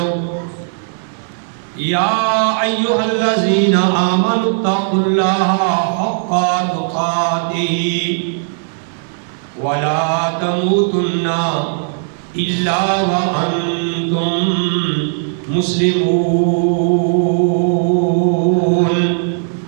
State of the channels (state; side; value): silent; left; digital silence